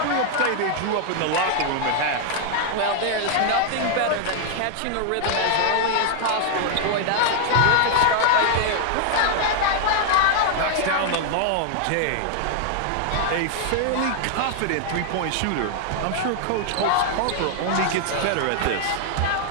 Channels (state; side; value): different; both; correlation 0.00